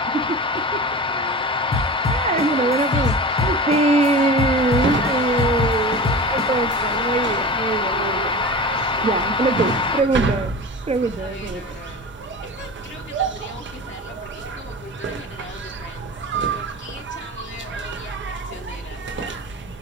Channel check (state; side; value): normal; both; correlation 0.32